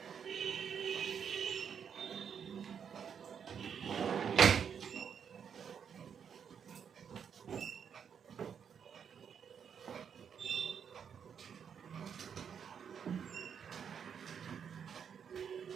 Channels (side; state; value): left; quieter; 7.5 dB